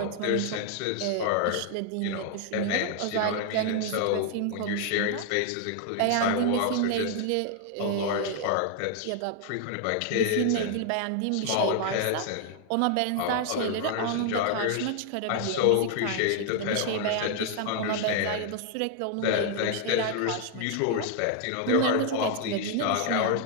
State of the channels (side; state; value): both; different; correlation 0.00